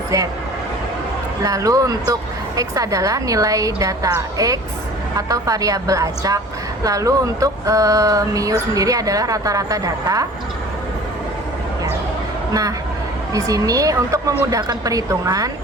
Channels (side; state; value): both; normal; correlation 0.44